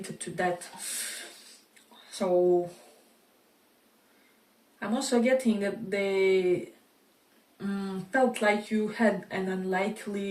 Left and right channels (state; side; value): identical; both; correlation 1.00